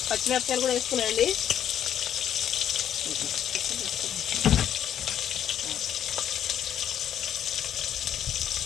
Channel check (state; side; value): quieter; right; 10.0 dB